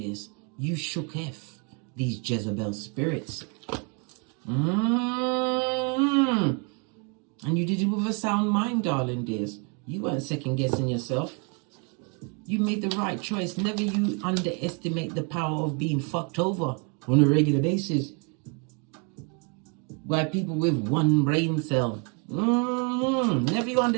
you shook off these Jezebel spirits. And you did it with a sound mind, darling dears. You weren't second guessing yourself. You made the right choice. Never you underestimate the power of being fucked over on a regular basis by people with one brain cell. Never you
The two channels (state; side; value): quieter; left; 35.4 dB